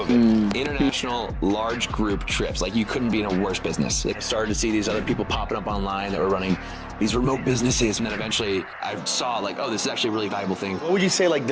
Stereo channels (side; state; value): both; identical; correlation 1.00